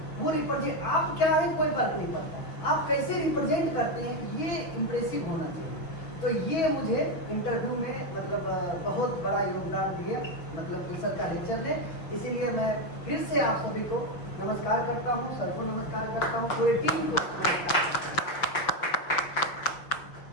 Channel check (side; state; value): right; late; 6.4 ms